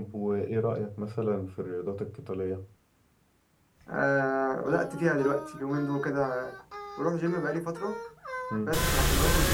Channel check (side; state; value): both; identical; correlation 1.00